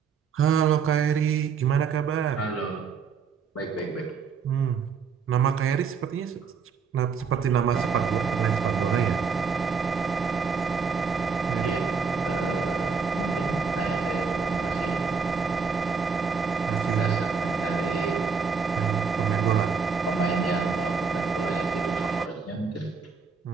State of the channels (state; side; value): quieter; left; 5.7 dB